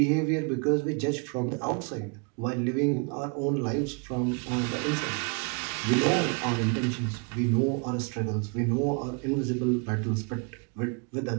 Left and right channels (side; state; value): left; quieter; 35.5 dB